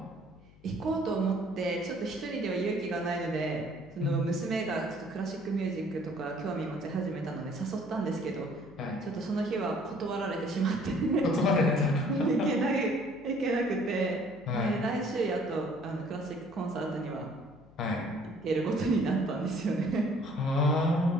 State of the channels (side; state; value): left; noise; hum, 25 dB below the sound